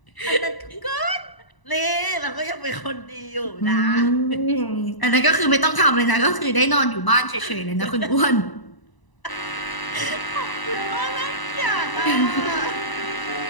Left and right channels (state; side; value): late; right; 1.0 ms